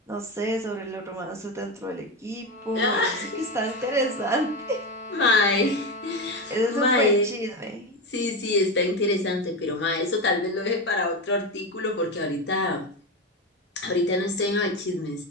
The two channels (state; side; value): normal; both; correlation 0.16